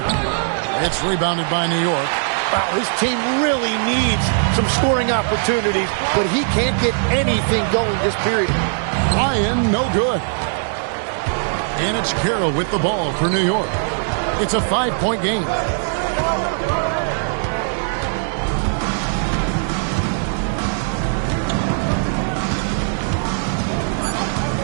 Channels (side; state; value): left; silent; 66 dB below the other